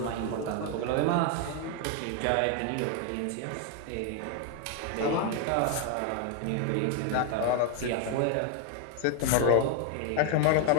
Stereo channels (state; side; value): different; both; correlation 0.01